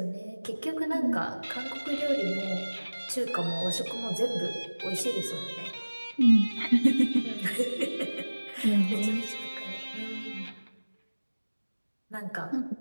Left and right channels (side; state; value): both; inverted; correlation -1.00